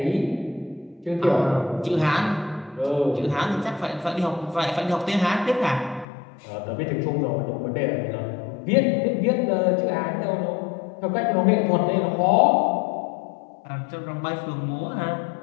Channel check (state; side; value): drops out; right; at 6.1 s